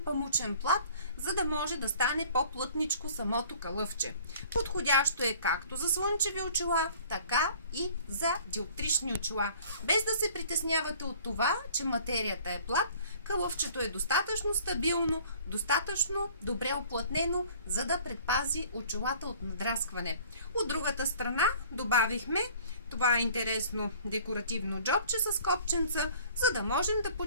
памучен плат, за да може да стане по-плътничко самото кълъвче. Подходящо е както за слънчеви очила, така и за диоптрични очила. Без да се притеснявате от това, че материята е плат, кълъвчето е достатъчно стабилно, достатъчно добре оплътнено, за да предпази очилата от надраскване. От другата страна добавихме това интересно декоративно джобче с копченца, за да можем да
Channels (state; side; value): inverted; both; correlation -0.51